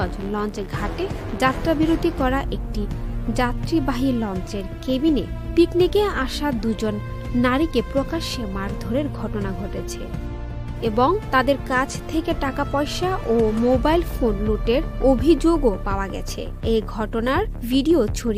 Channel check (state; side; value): identical; both; correlation 1.00